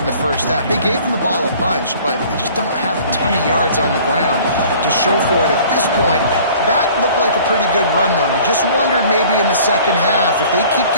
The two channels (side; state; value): both; inverted; correlation -0.50